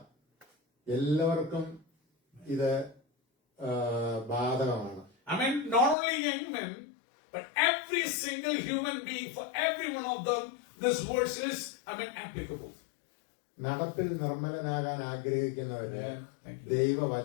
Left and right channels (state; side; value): drops out; right; at 6.0 s